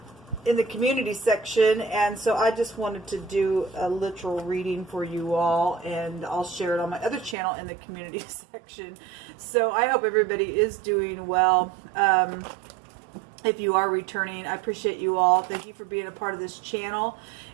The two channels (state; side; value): drops out; left; at 7.4 s